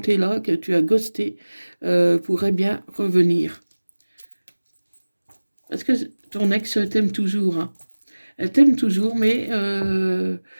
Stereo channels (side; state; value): both; inverted; correlation -1.00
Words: là, que tu as ghosté, pourrait bien revenir. Parce que ton ex t'aime toujours, hein. Elle t'aime toujours, mais